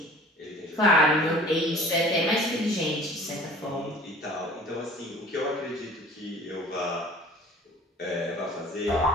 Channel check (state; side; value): normal; both; correlation 0.47